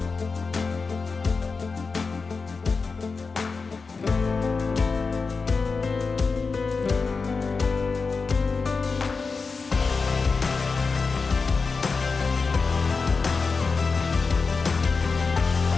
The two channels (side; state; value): right; quieter; 4.5 dB